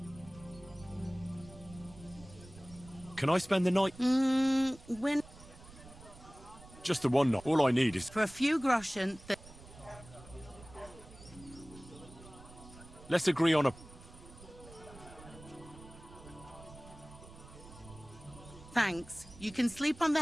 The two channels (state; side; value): noise; right; rumble, 19 dB below the sound